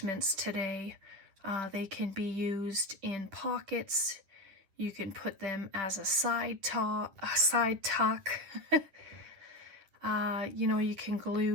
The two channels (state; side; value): late; left; 10 ms